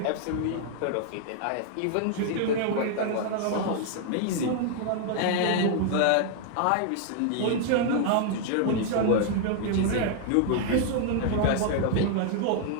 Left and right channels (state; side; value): different; both; correlation -0.01